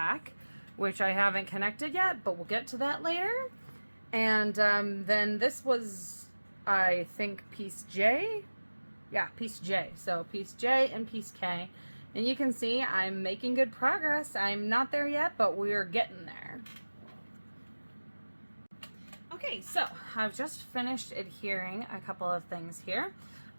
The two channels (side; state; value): both; inverted; correlation -1.00